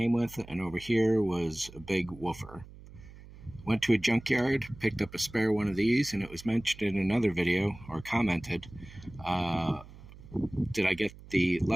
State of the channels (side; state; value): right; noise; hum, 18 dB below the sound